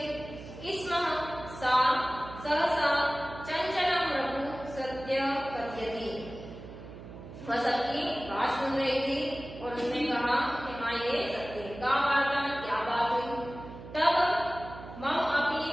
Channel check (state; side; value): noise; right; hum, 14 dB below the sound